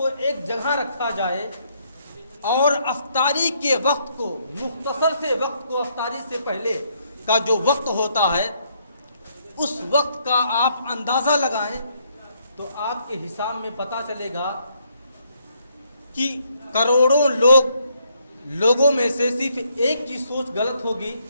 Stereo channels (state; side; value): inverted; both; correlation -0.71